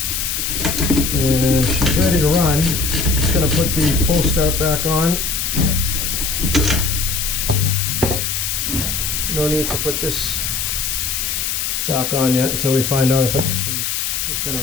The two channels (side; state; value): left; noise; hiss, 1 dB below the sound